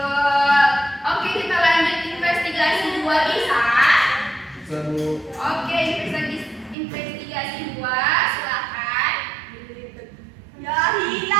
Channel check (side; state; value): left; drops out; at 6.8 s